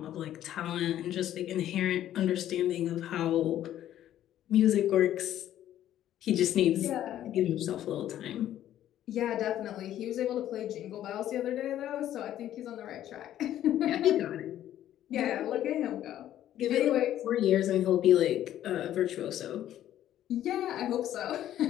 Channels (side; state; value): right; quieter; 12.0 dB